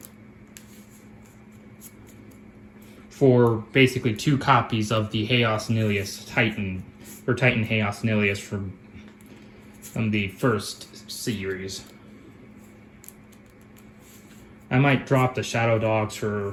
For basically 2 copies of the Chaos Nilius Titan, or Titan Chaos Nilius from the first series. I might drop the Shadow Dogs for,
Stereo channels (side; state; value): both; identical; correlation 1.00